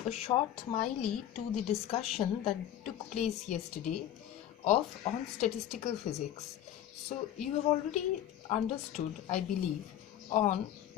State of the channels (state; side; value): quieter; right; 11.4 dB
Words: A short MILEY to the discussion that took place yesterday on statistical physics. So, you have already understood, I believe, on